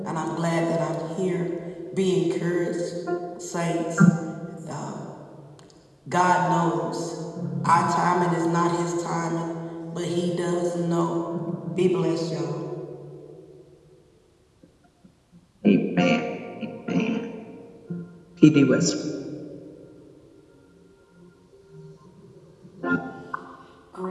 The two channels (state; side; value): identical; both; correlation 1.00